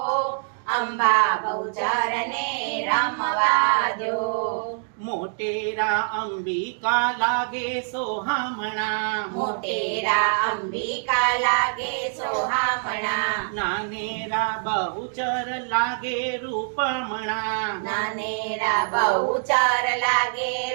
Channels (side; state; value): left; silent; digital silence